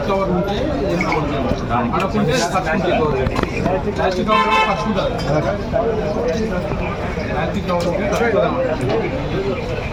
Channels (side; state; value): both; identical; correlation 1.00